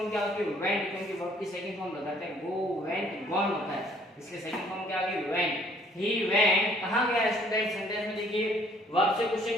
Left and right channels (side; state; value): both; normal; correlation 0.60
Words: क्या होती है, वेंट, क्योंकि वर्ब की सेकंड फॉर्म लगाते हैं, गो वेंट गॉन होता है, इसलिए सेकंड फॉर्म क्या आ गई, वेंट, ही वेंट, कहां गया स्टूडेंट, सेंटेंस में देखिए वर्ब से